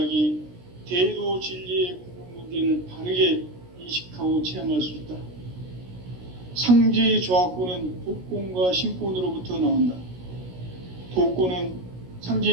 대도 진리의 궁극 문제를 바르게 인식하고 체험할 수 있다. 상제의 조화권은 독권과 신권으로부터 나온다. 독권은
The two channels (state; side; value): late; left; 16 ms